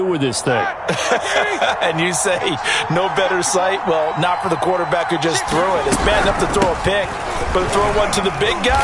with this thing? And you say, no better sight? Well, not for the quarterback who just threw it. It's bad enough to throw a pick, but to throw one to the big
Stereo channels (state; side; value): identical; both; correlation 1.00